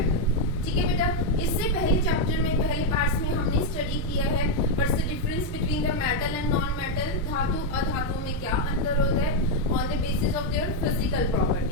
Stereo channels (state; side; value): normal; both; correlation 0.02